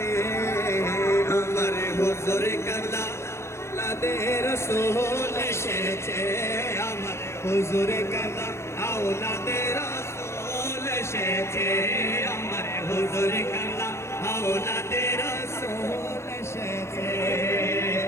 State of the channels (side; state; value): right; late; 0.13 ms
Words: আমার হুজুর কালা আওলাদে রসুল এসেছে আমার হুজুর কালা আওলাদে রসুল এসেছে আমার হুজুর কালা আওলাদে রসুল এসেছে